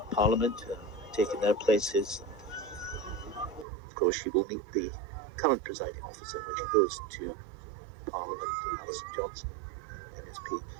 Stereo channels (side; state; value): left; drops out; at 3.7 s